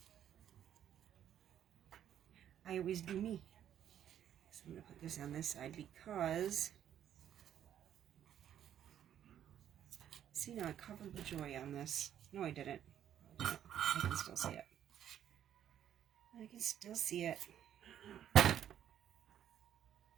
I always do me. So I'm gonna put this on this side because See, now I covered the joy on this. No, I didn't. I can still see it. I can still see it.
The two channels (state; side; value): quieter; left; 10.3 dB